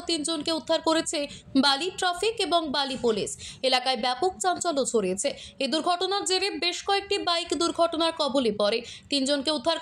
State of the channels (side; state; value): both; identical; correlation 1.00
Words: 3 জনকে উদ্ধার করেছে বালি ট্রাফিক এবং বালি পুলিশ। এলাকায় ব্যাপক চাঞ্চল্য ছড়িয়েছে। এই দুর্ঘটনার জেরে বেশ কয়েকটি বাইক দুর্ঘটনার কবলে পড়ে। 3 জনকে উদ্ধার